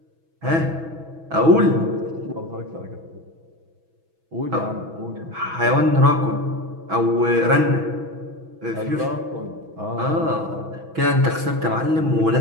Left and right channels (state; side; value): late; left; 6.2 ms